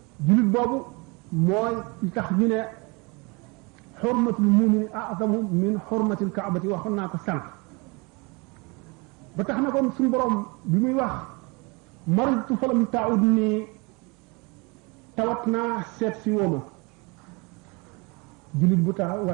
jullit boobu mooy li tax ñu ne xurmatul mumini a'zamu min xurmatil kaabati waxoon naa ko sànq ba tax na kon suñu borom bi muy wax maritu falam taud ni tawat naa seet si wooma jullit bu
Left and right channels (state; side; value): quieter; left; 28.4 dB